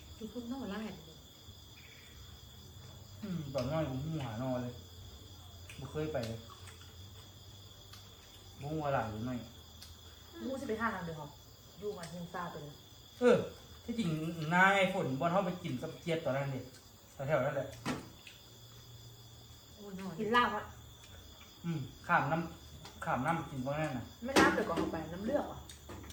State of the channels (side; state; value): both; identical; correlation 1.00